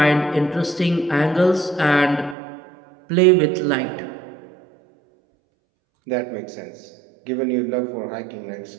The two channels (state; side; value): drops out; left; at 2.4 s